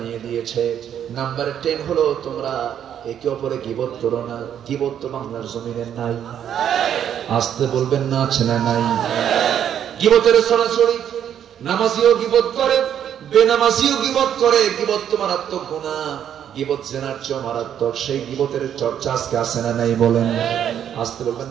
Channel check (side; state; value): left; quieter; 9.5 dB